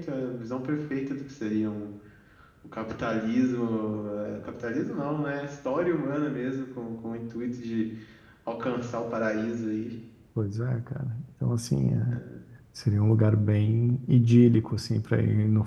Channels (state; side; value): identical; both; correlation 1.00